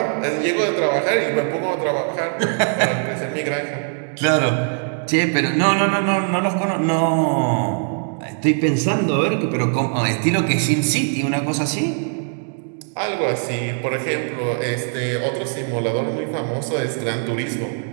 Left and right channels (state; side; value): silent; left; 56 dB below the other